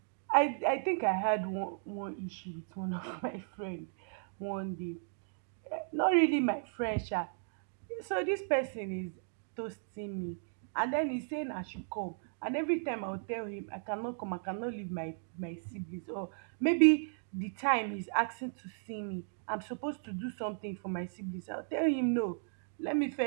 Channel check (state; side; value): silent; left; digital silence